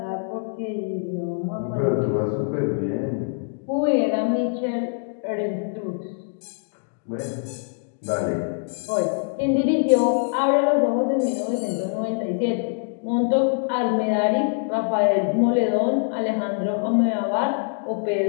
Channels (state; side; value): silent; right; digital silence